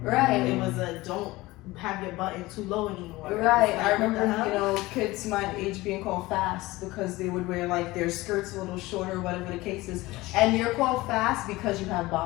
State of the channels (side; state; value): right; quieter; 19.8 dB